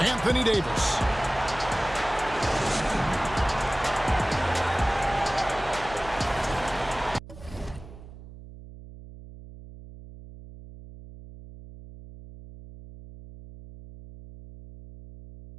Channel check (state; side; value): noise; right; hum, 16 dB below the sound